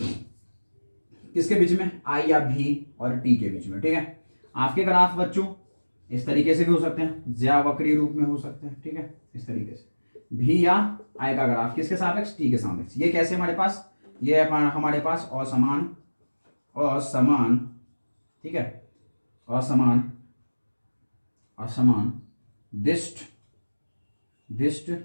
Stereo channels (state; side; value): inverted; both; correlation -1.00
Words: किसके बीच में? आई या भी और टी के बीच में, ठीक है। आपके ग्राफ बच्चों इस तरीके से भी हो सकते हैं, ज्यावक्रीय रूप में हो सकते हैं, ठीक है, इस तरीके से। भी या आई का ग्राफ किसके सापेक्ष? टी के सापेक्ष। ये कैसे हमारे पास? ये हमारे पास असमान, असमान, ठीक है, असमान, असमान दिष्ट, दिष्ट